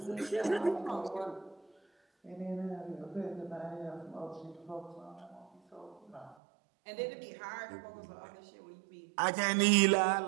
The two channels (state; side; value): drops out; left; at 6.4 s